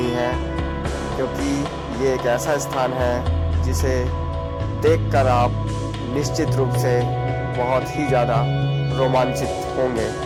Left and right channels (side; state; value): both; identical; correlation 1.00